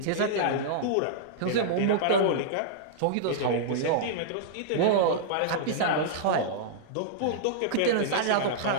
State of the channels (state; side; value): different; both; correlation -0.02